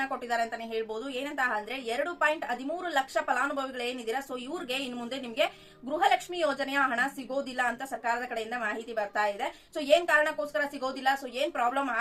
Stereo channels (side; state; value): both; identical; correlation 1.00